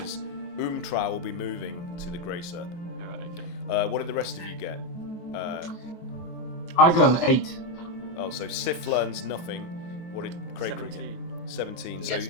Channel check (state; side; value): late; right; 23 ms